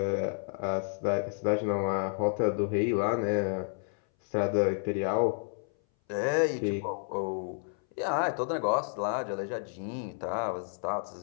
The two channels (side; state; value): right; silent; 57 dB below the other